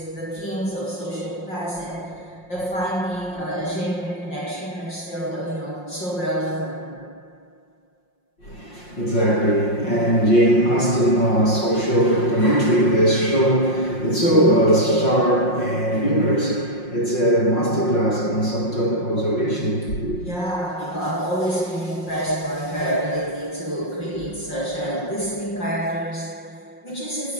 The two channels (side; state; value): right; late; 5.6 ms